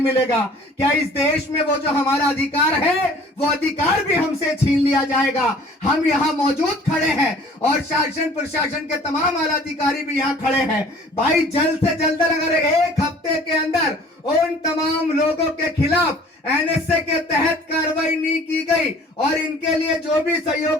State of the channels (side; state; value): both; normal; correlation 0.51